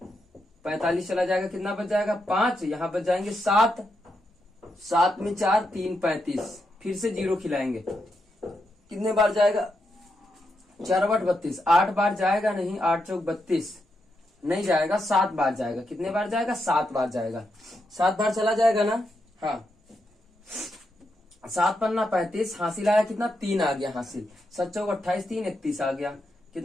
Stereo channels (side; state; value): both; normal; correlation 0.83